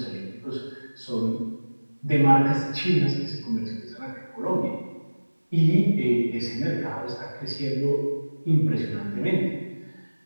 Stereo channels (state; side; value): inverted; both; correlation -1.00